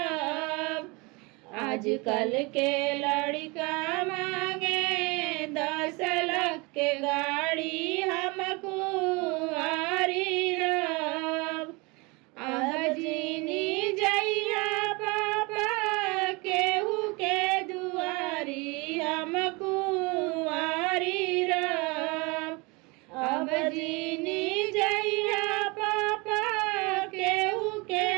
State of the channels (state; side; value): quieter; left; 26.9 dB